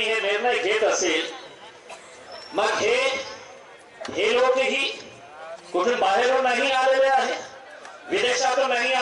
हे निर्णय घेत असेल, मग हे लोकही कुठून बाहेरून नाही आलेले आहे, विदेशातून नाही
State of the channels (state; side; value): identical; both; correlation 1.00